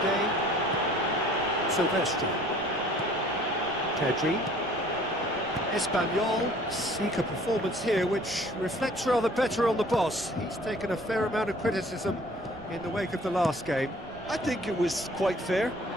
Sylvestre. Pedri. Espanyol seek a performance here which reflects rather better on the boss. He's taken a fair amount of criticism in the wake of the last game. I think it was quite fair,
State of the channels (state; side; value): noise; right; rumble, 20 dB below the sound